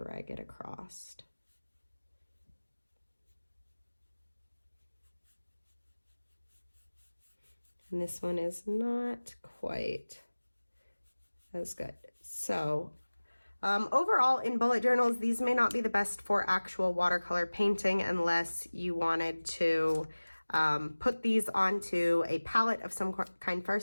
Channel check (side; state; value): both; inverted; correlation -1.00